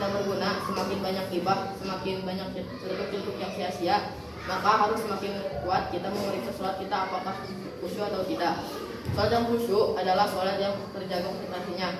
berguna, semakin banyak gibah, semakin banyak celuk-celuk yang sia-sia, maka harus semakin kuat kita memeriksa sholat kita apakah khusyuk atau tidak. Sholat yang khusyuk adalah sholat yang terjaga konsentrasinya,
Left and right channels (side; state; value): both; identical; correlation 1.00